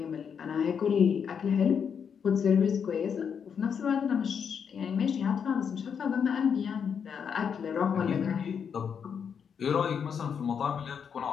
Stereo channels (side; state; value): right; quieter; 7.1 dB